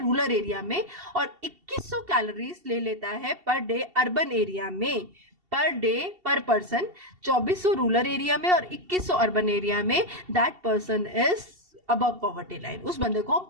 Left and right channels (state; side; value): late; left; 2.7 ms